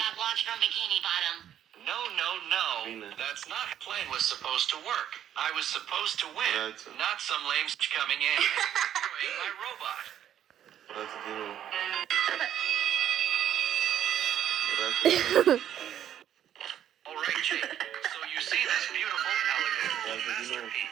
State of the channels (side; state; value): left; quieter; 10.5 dB